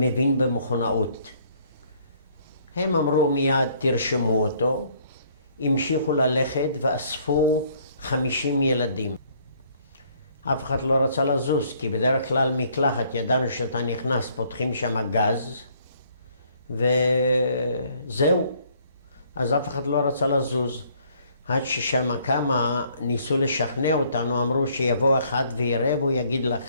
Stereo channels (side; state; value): both; inverted; correlation -0.63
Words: במכונאות. הם אמרו מיד, תרשמו אותו, המשיכו ללכת ואספו 50 ילדים. אף אחד לא רצה לזוז, כי בדרך כלל מקלחת ידענו שאתה נכנס, פותחים שם גז, וזהו. אז אף אחד לא רצה לזוז. עד ששם כמה ניסו לשכנע אותנו, אמרו שיבוא אחד ויראה והוא יגיד